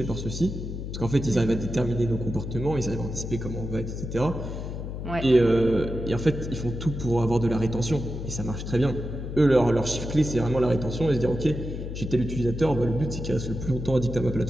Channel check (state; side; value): noise; left; hum, 6 dB below the sound